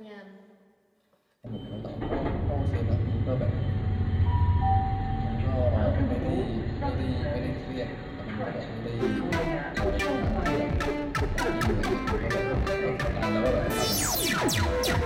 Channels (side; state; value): both; identical; correlation 1.00